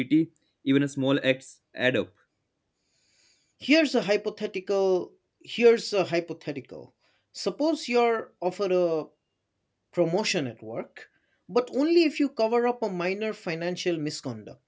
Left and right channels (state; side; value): identical; both; correlation 1.00